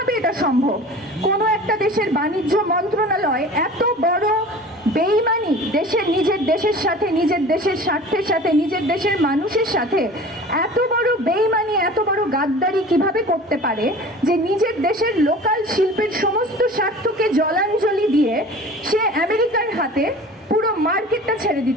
এটা সম্ভব। কোনো একটা দেশের বাণিজ্য মন্ত্রণালয় এত বড় বেইমানি নিজের দেশের সাথে, নিজের দেশের স্বার্থের সাথে, নিজের দেশের মানুষের সাথে এত বড় বেইমানি, এত বড় গাদ্দারি কিভাবে করতে পারে যে নিজের দেশের লোকাল শিল্পের সমস্ত স্বার্থকে জলাঞ্জলি দিয়ে সে আমেরিকার হাতে পুরো মার্কেটটা ছেড়ে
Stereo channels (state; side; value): normal; both; correlation 0.40